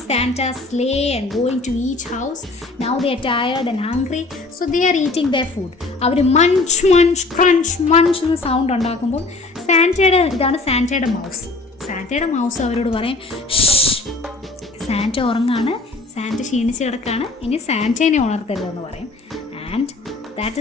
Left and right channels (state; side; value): quieter; right; 3.4 dB